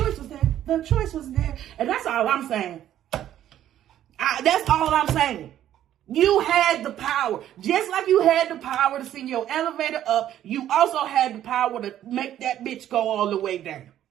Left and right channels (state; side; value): quieter; left; 11.7 dB